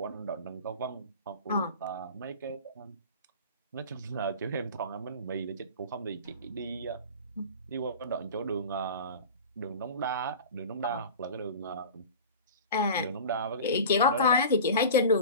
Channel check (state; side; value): inverted; both; correlation -0.35